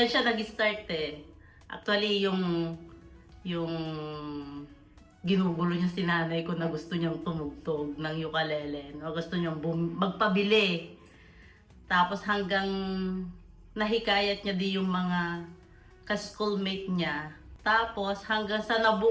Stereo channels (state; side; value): identical; both; correlation 1.00